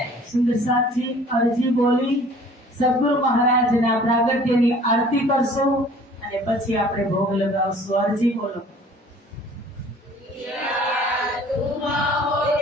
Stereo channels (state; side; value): normal; both; correlation 0.51